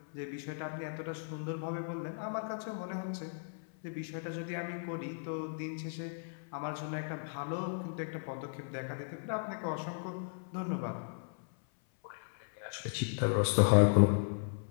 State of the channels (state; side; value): silent; right; 54 dB below the other